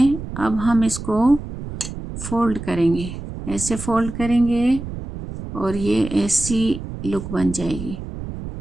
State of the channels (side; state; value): right; noise; rumble, 9 dB below the sound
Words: अब हम इसको फोल्ड करेंगे, ऐसे फोल्ड करेंगे और ये ऐसी लुक बन जाएगी।